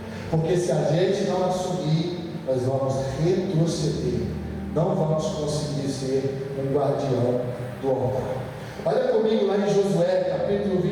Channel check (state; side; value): identical; both; correlation 1.00